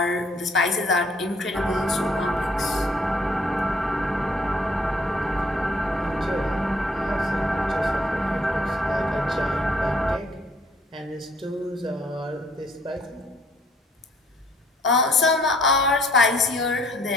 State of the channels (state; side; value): normal; both; correlation 0.63